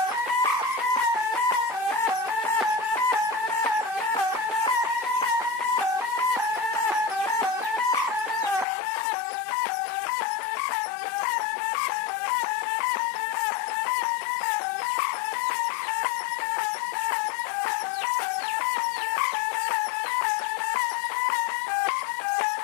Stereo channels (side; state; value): right; drops out; at 8.7 s